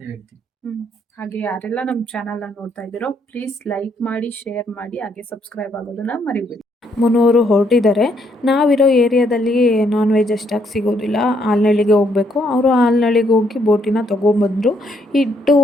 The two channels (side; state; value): both; normal; correlation 0.72